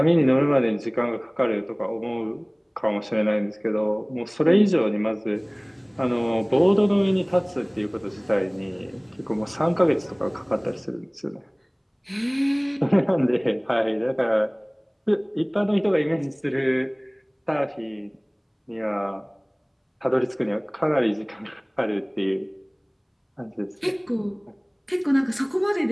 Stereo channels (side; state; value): both; identical; correlation 1.00